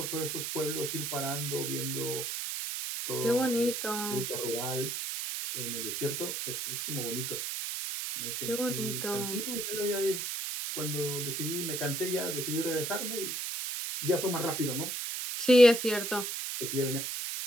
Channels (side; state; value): right; noise; hiss, 3 dB below the sound